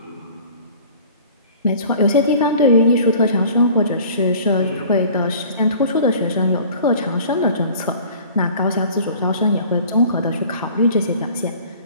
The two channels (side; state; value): both; inverted; correlation -0.47